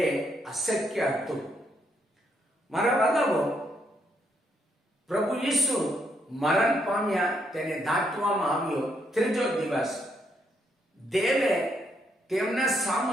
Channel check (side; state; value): both; normal; correlation 0.75